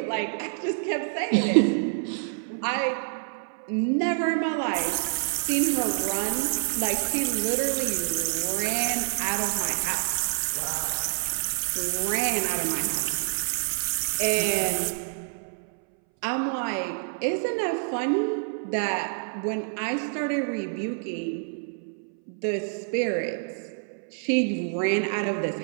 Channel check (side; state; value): left; silent; 60 dB below the other